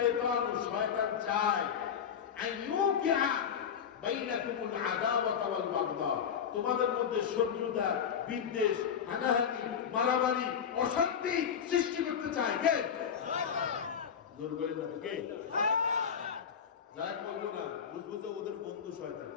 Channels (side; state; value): right; quieter; 7.7 dB